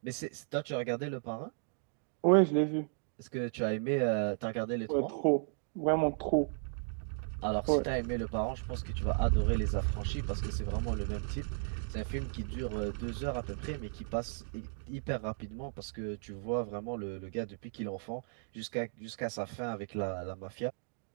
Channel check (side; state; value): left; silent; digital silence